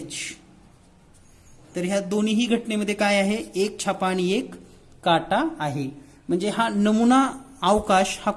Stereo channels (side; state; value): both; identical; correlation 1.00